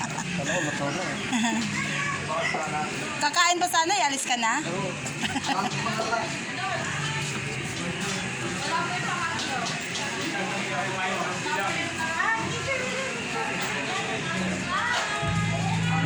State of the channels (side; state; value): both; identical; correlation 1.00